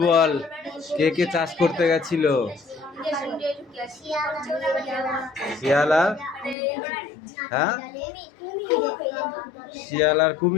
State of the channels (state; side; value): drops out; right; at 6.6 s